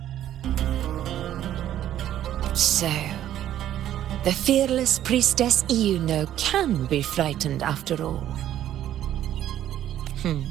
So, the fearless priestess Iuno can be frightened after all.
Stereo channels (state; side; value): quieter; left; 11.8 dB